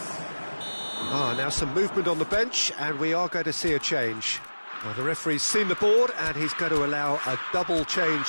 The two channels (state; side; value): inverted; both; correlation -1.00